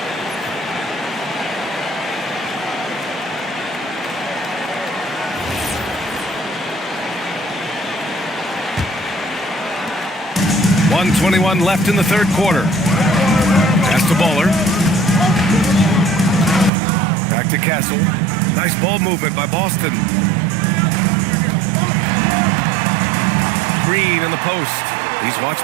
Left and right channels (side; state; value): left; drops out; at 16.7 s